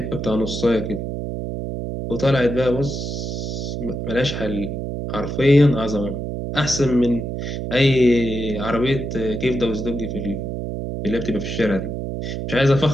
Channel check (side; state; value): right; noise; hum, 4 dB below the sound